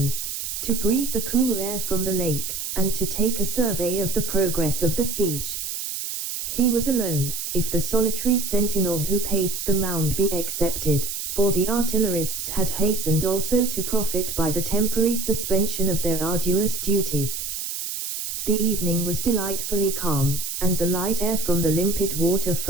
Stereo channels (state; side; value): noise; right; hiss, 5 dB below the sound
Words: to breathe the cool air from the lake, and to take a survey of the progress of the siege. He was alone, if the solitary sentinel who paced the mound be excepted, for the artillerists had hastened also to profit by the temporary suspension of their arduous duties. The evening was delightfully calm, and the light air from the limpid water